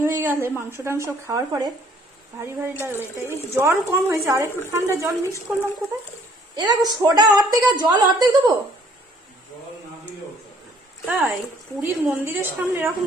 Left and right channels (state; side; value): normal; both; correlation 0.60